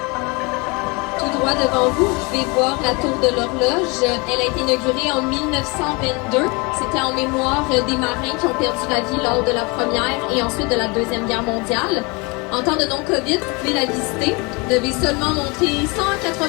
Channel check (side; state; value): right; quieter; 28.2 dB